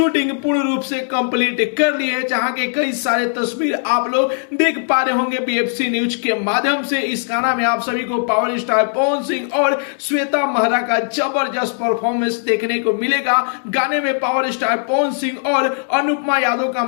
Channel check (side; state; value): right; silent; digital silence